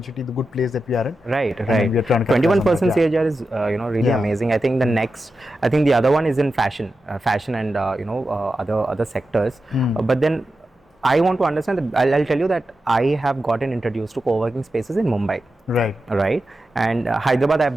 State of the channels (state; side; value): normal; both; correlation 0.91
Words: the good place that we are in. Right. We are trying to 21% CAGR is really amazing. I think the other one is in fashion and other sectors. But then I want to understand that I'll tell you that I have gotten introduced to co-working spaces in Mumbai. Right. And Hyderabad,